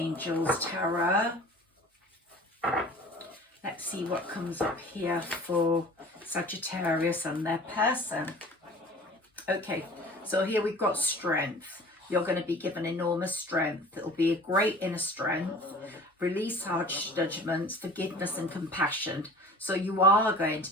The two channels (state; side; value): normal; both; correlation 0.43